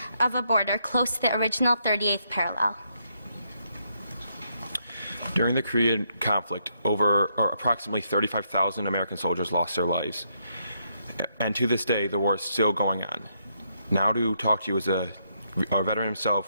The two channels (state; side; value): inverted; both; correlation -0.76